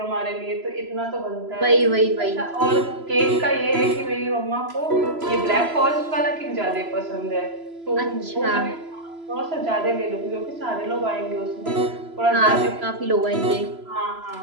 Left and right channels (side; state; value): left; late; 3.0 ms